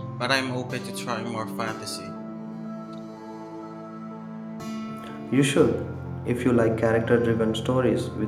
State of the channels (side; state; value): both; identical; correlation 1.00